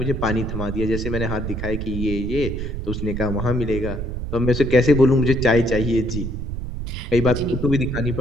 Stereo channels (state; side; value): noise; right; rumble, 5 dB below the sound